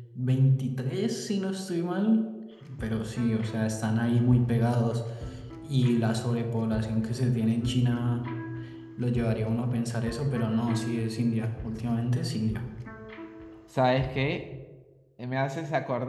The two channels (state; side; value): identical; both; correlation 1.00